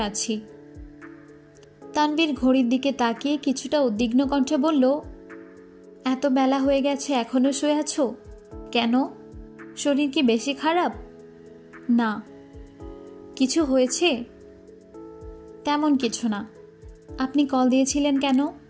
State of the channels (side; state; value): both; identical; correlation 1.00